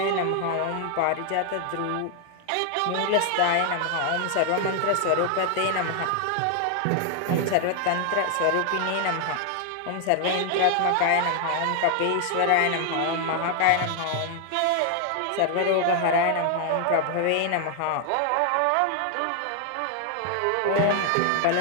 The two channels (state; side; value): different; both; correlation 0.00